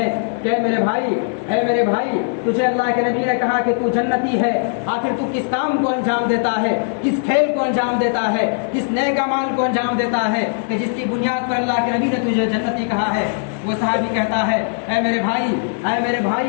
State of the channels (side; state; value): right; silent; digital silence